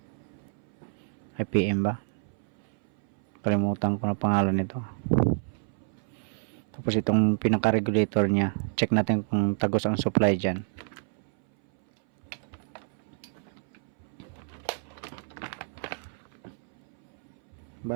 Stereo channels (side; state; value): left; silent; 59 dB below the other